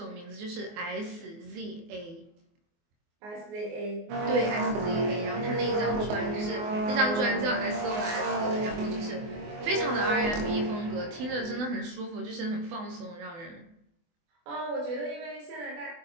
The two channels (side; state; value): left; late; 24 ms